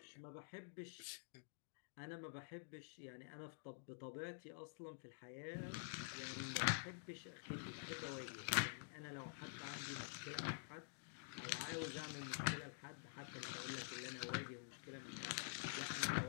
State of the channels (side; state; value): right; silent; digital silence